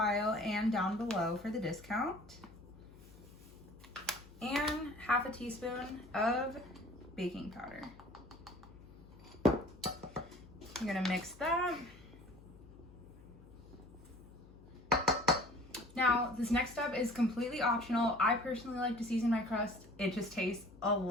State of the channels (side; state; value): left; noise; hum, 21 dB below the sound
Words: and down below for the discount. And 1/2 teaspoon of baking powder. You're gonna mix that. Now, this next step is completely optional. I personally like to season my crust. It just tastes a